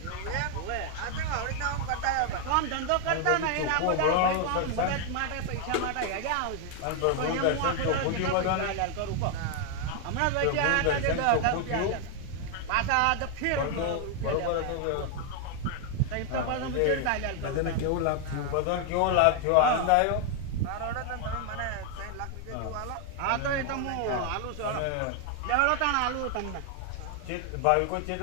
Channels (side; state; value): both; different; correlation 0.00